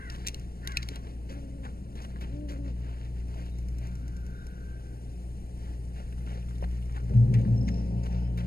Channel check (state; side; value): late; right; 0.44 ms